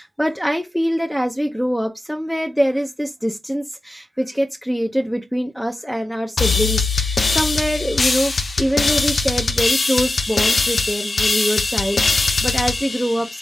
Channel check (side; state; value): both; normal; correlation 0.93